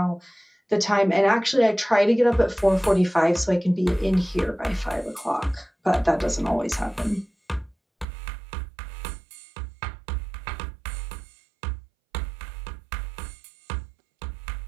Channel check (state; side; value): drops out; left; at 8.1 s